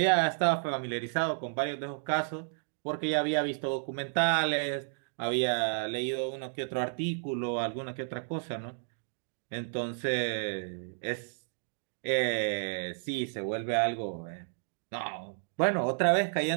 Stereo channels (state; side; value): silent; left; digital silence